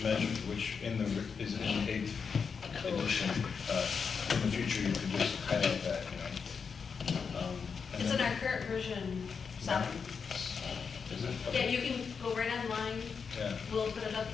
measure, which is it in the 8th edition? In the future, you could just highlight that, you know. And It's in then- our current version 7. Is it? Yeah, you can go right online. Yeah. We'll put it up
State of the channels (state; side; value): quieter; right; 5.9 dB